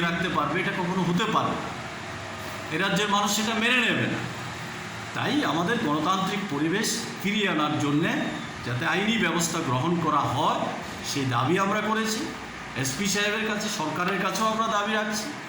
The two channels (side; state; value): both; identical; correlation 1.00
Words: রাখতে পারবে এটা কখনো হতে পারবে না এই রাজ্যের মানুষ সেটা মেনে নেবে না তাই আমাদের গণতান্ত্রিক পরিবেশ ফিরিয়ে আনার জন্যে যাতে আইনি ব্যবস্থা গ্রহণ করা হয় সেই দাবি আমরা করেছি এসপি সাহেবের কাছে সরকারের কাছেও আমরা দাবি রাখছি